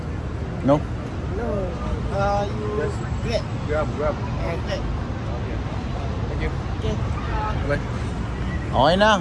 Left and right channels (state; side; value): identical; both; correlation 1.00